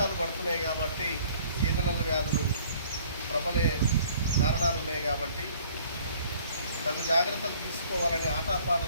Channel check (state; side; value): inverted; both; correlation -0.56